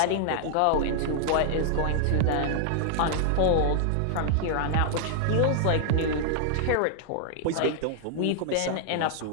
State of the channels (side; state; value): both; different; correlation 0.00